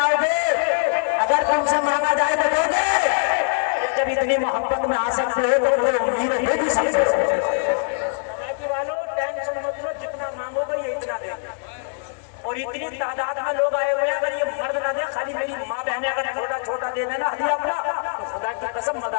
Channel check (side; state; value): right; silent; 64 dB below the other